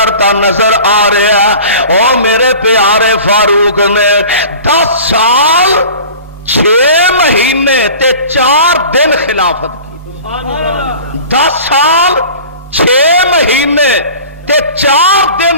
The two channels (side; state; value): both; inverted; correlation -0.41